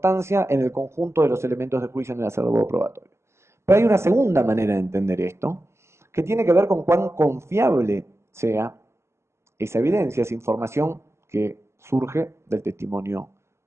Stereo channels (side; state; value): left; late; 0.13 ms